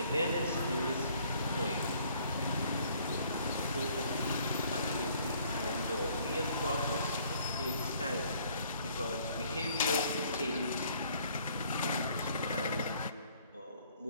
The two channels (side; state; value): both; inverted; correlation -0.61